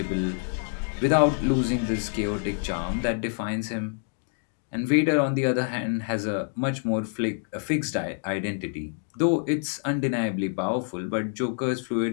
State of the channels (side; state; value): right; silent; 60 dB below the other